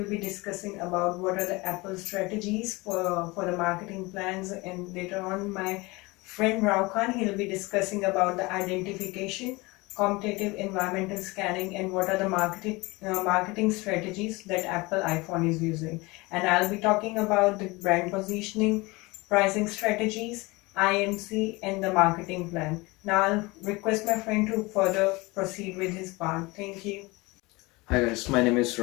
be discussing about what are the Apple strategies for the marketing plans, and later on my friend Rao Khan, he'll be discussing about the identification, competitive environmental scanning, and what are the marketing strategies that Apple iPhone is using. And I'll be talking about the brand positioning, pricing strategies, IMC, and the marketing plan. Now I'll request my friend to further proceed with his part. Thank you. Hi guys, my name is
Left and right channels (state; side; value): quieter; right; 23.6 dB